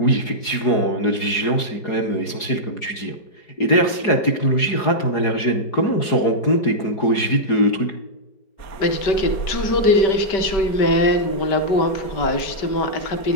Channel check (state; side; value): late; right; 4.8 ms